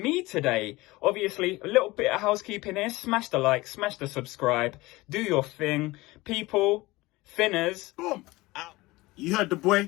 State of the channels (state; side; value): quieter; right; 20.7 dB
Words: me today. Obviously, a little bit of housekeeping here. Smash the like, smash the subscribe. Do your thing. People, Finners. Boom. Out. You heard the